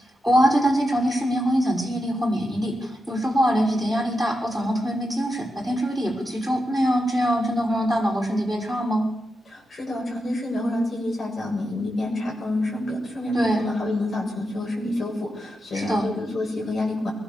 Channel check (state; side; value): normal; both; correlation 0.87